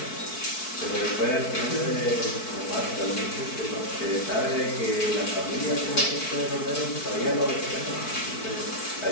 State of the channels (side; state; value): right; late; 4.6 ms